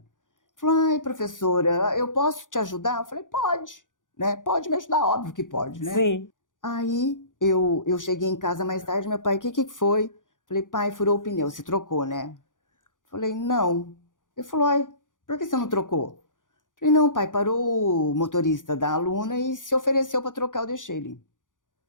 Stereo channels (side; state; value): right; late; 0.88 ms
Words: Falou, ai, professora, eu posso te ajudar? Eu falei, pode, né? Pode me ajudar, óbvio que pode, né? Sim. Aí eu cheguei em casa mais tarde, meu pai, o que foi? Falei, pai, furou o pneu, você trocou, né? Falei, não. Ele falou, ai, por que você não trocou? Falei, não, pai, parou o motorista da aluna e se ofereceu para trocar, eu deixei ele.